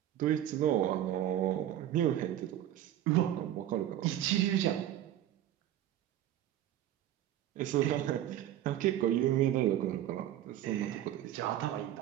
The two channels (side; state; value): left; quieter; 12.3 dB